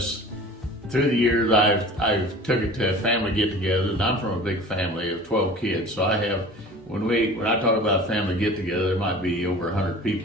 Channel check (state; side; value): normal; both; correlation 0.42